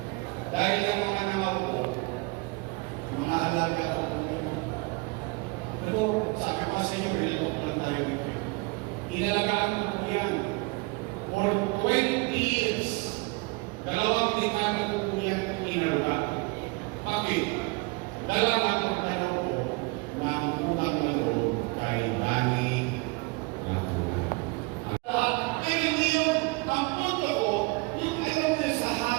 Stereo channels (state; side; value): quieter; left; 27.2 dB